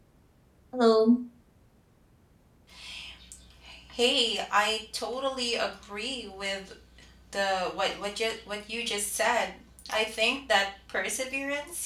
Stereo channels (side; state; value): both; identical; correlation 1.00